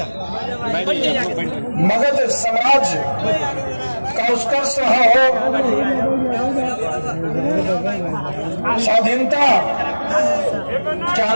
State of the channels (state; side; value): inverted; both; correlation -1.00